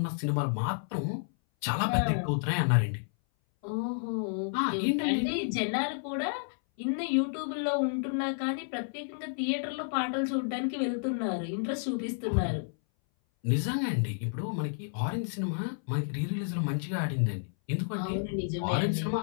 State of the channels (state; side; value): silent; right; 57 dB below the other